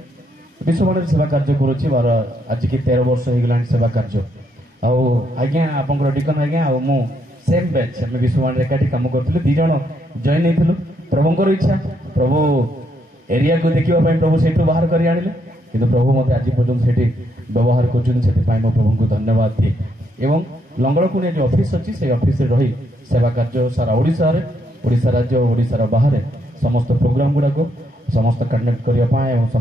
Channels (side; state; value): both; normal; correlation 0.75